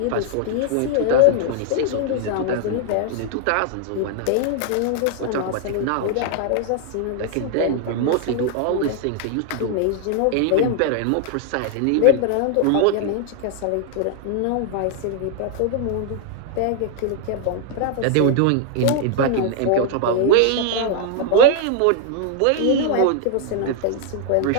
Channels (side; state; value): both; different; correlation 0.00